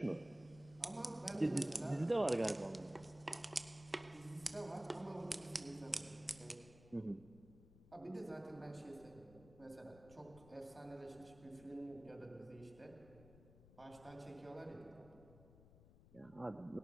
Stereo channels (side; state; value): left; noise; rumble, 20 dB below the sound